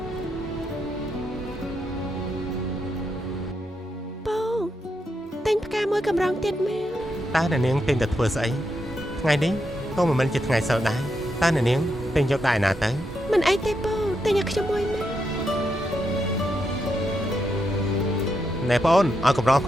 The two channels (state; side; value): normal; both; correlation 0.82